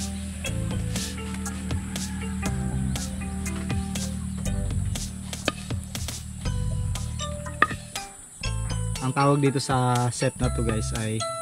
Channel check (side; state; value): both; identical; correlation 1.00